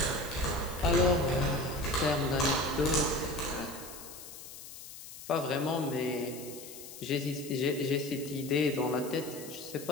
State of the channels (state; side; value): noise; left; hiss, 14 dB below the sound